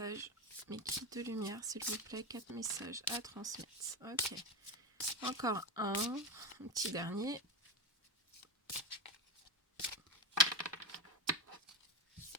Mes guides de lumière, s'il vous plaît, 4 messages à transmettre. Ok. Encore un petit dernier.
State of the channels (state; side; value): normal; both; correlation 0.16